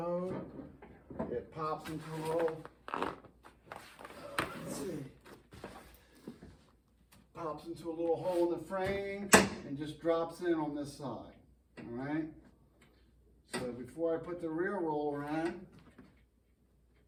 it pops into a little, let's see, pops into a little hole in the frame and just drops in on this side. Alright, so before I put the rear roller in,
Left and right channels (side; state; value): both; identical; correlation 1.00